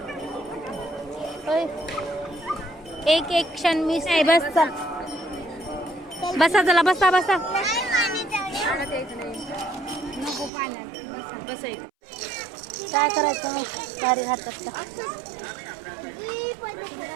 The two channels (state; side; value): drops out; left; at 10.5 s